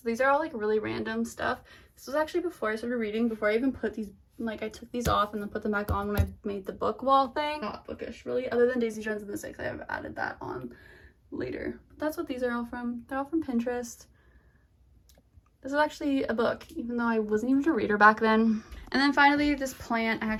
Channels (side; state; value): both; identical; correlation 1.00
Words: These are all like really random stuff. This was actually before I started reading, before I even put these, like I took these off and then put them back on when I made the book wall thing. Not bookish really, other than Daisy Jones and the Six. I have added that on later. But that's what these are all from. They're all from Pinterest. This is actually a book, even though I wasn't even a reader back then. And then finally, this plant. I